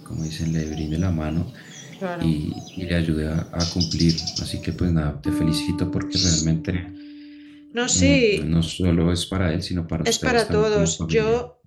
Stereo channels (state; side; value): identical; both; correlation 1.00